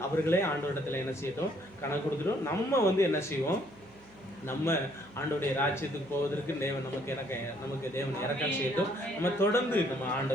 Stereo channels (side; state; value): right; noise; hum, 27 dB below the sound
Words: அவர்களே ஆண்டவரிடத்தில் என்ன செய்யட்டும், கணக்கு கொடுத்துட்டோம். நம்ம என்ன செய்வோம், நம்ம ஆண்டவருடைய ராஜ்யத்துக்கு போவதற்கு தேவன் நமக்கு தேவன் இரக்கம் செய்யட்டும். நம்ம தொடர்ந்து நம்ம